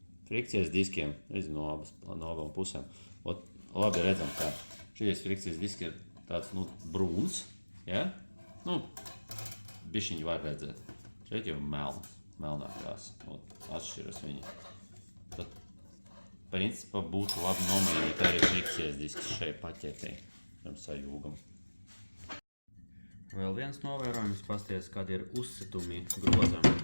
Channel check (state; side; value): inverted; both; correlation -1.00